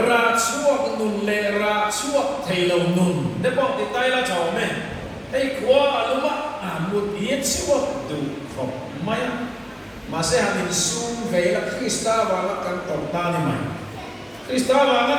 chuak nun le ra chuak theilo nun de bok ti tai la chaw me ei khwa aluma mut yet chuak du khop maya Masih hamin sum vela Krista wala kan torta ni mai. Krista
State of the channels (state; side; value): identical; both; correlation 1.00